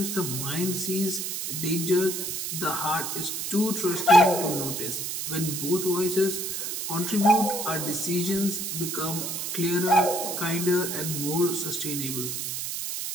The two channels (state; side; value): noise; right; hiss, 3 dB below the sound